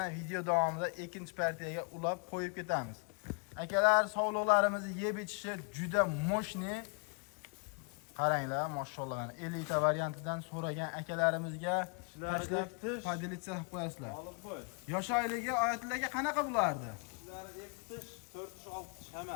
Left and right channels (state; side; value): quieter; right; 38.4 dB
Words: video davomida ikkinchi partiyaga ulab qo'yib ketamiz. Akalar sog'liqlarimizni yeb ichishi juda moshni. Qaranglar, mashallah. 50 ta variantidan so'ragan akalarimizga tashlab padilitsiya qilib qo'yasizlar. Yosh oyligi Oyatlarga qanaqa bo'lardi? 2 tish, 4 tish, 6 tish